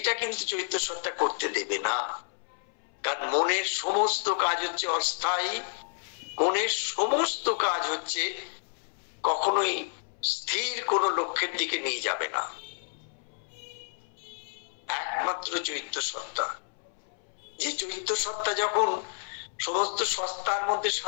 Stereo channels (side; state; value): right; silent; 58 dB below the other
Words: কিন্তু চৈত্য সত্তা করতে দেবে না। কারণ মনের সমস্ত কাজ হচ্ছে অস্থায়ী, মনের সমস্ত কাজ হচ্ছে কখনোই স্থির কোনো লক্ষ্যের দিকে নিয়ে যাবে না। একমাত্র চৈত্য সত্তা, যে চৈত্য সত্তা যখন সমস্ত সত্তার মধ্যে